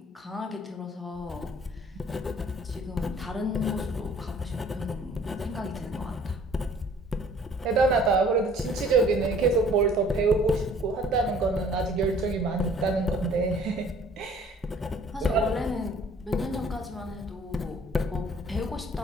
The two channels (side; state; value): both; normal; correlation 0.54